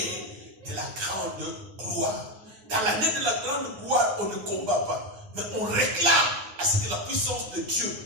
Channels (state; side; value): late; left; 9.2 ms